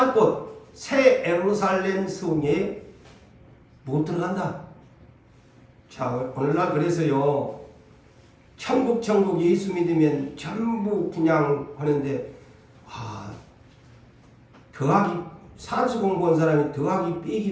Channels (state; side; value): identical; both; correlation 1.00